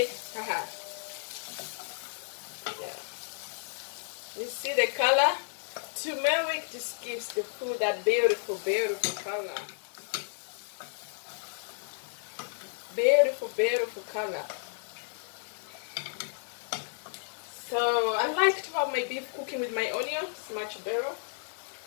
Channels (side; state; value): right; silent; 56 dB below the other